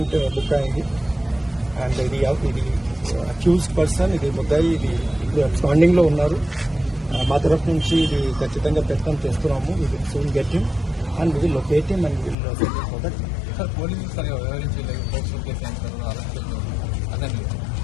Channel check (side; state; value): right; drops out; at 12.4 s